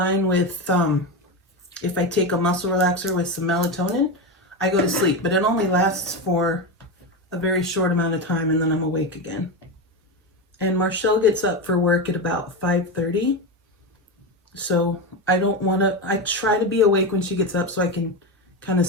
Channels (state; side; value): normal; both; correlation 0.16